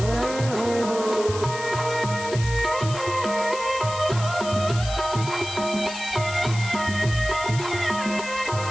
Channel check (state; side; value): noise; left; hiss, 11 dB below the sound